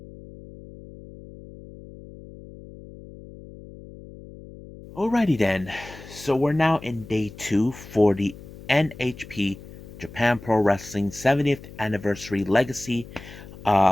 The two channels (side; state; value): left; noise; hum, 17 dB below the sound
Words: Alrighty then, so we're now in day two for the NHP Japan Pro Wrestling 70th Anniversary Legacy.